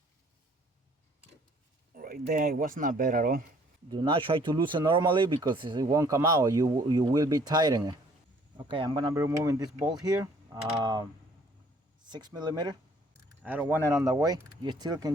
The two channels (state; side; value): normal; both; correlation 0.59